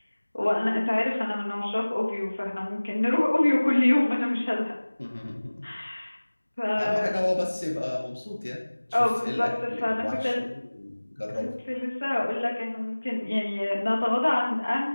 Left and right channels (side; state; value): both; inverted; correlation -1.00